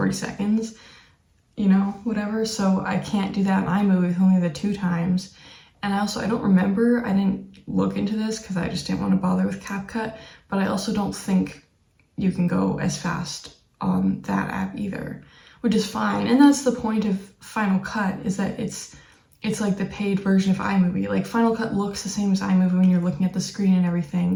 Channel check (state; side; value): identical; both; correlation 1.00